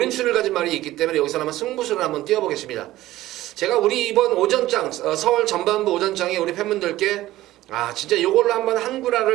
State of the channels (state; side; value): quieter; left; 15.7 dB